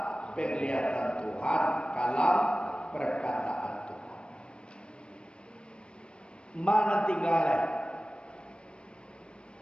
penglihatan Tuhan, kalam perkataan Tuhan. Mana tinggal?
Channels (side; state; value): right; late; 0.057 ms